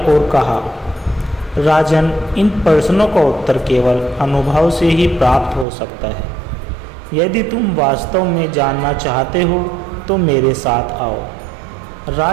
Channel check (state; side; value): drops out; left; at 5.7 s